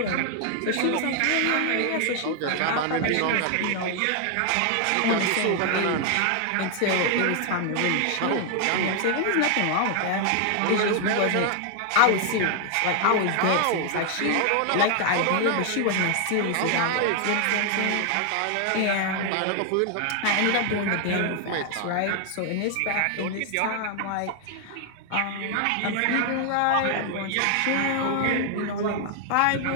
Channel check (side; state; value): both; different; correlation 0.00